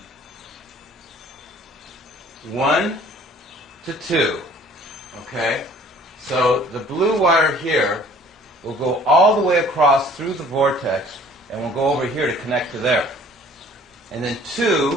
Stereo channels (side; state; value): both; normal; correlation 0.53